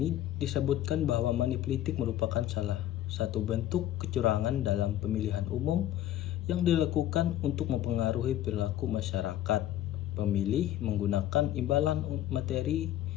disebutkan bahwa manipolitik merupakan salah satu bentuk kecurangan dalam pemilihan umum yang dilakukan untuk mempengaruhi perilaku masyarakat pemilih menggunakan imbalan materi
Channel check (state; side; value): quieter; right; 12.7 dB